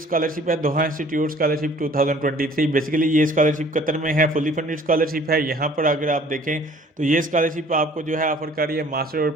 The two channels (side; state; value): both; normal; correlation 0.53